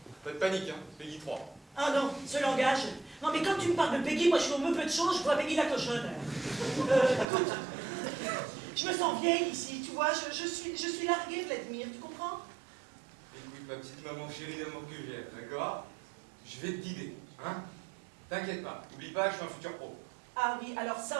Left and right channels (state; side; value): drops out; left; at 7.2 s